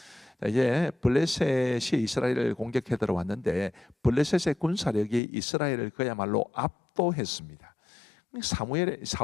이제 블레셋이 이스라엘을 공격해 들어왔는데 블레셋의 군사력이 이스라엘을 그야말로 압도했습니다.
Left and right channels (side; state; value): right; drops out; at 5.2 s